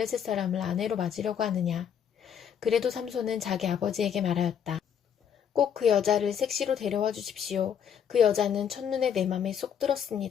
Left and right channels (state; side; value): quieter; right; 8.3 dB